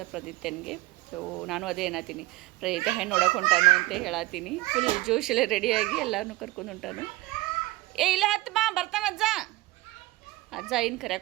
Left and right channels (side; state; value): left; quieter; 19.3 dB